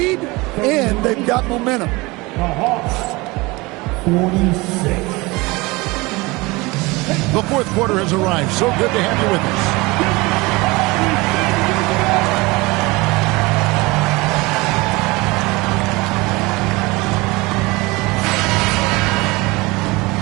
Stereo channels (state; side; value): quieter; left; 23.3 dB